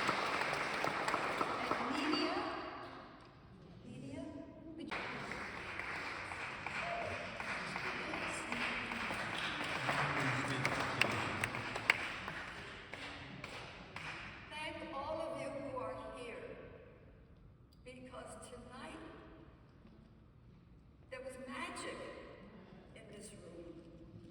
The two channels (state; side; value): identical; both; correlation 1.00